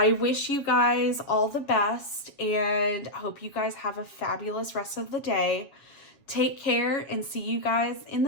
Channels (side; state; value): right; late; 7.3 ms